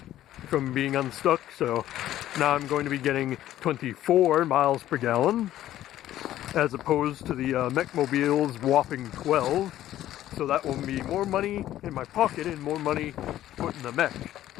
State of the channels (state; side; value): quieter; right; 13.2 dB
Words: from being unstuck, so now I'm going to be getting 24 miles per gallon as opposed to the Meckmobile's whopping 12. So that will be more money in my pocket and more money put in the mech.